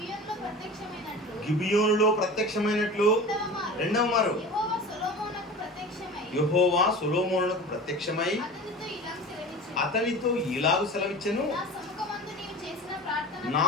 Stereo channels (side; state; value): both; normal; correlation 0.35